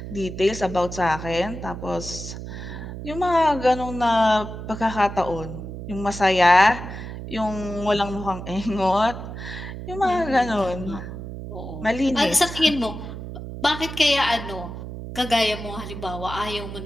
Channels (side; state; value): right; noise; hum, 9 dB below the sound